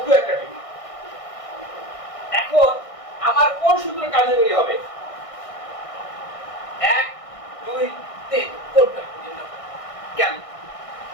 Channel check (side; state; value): right; late; 1.6 ms